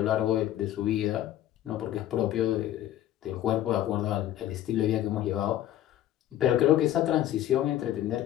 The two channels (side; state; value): right; quieter; 12.7 dB